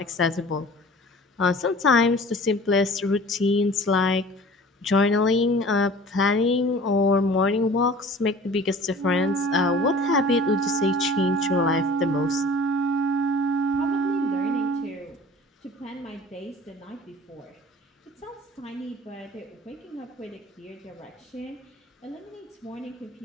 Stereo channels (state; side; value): normal; both; correlation 0.45